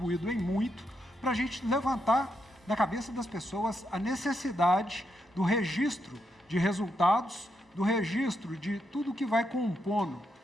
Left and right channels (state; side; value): normal; both; correlation 0.81